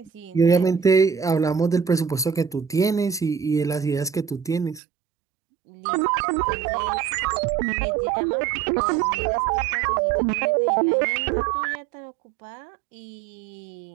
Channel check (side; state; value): left; drops out; at 4.8 s